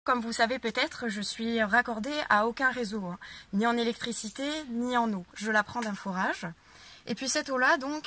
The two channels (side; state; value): both; identical; correlation 1.00